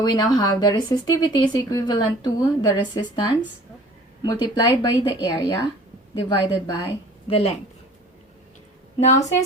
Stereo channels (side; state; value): both; normal; correlation 0.47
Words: we now have the resistivity is equivalent to the resistance multiplied by the area divided by the length. Now,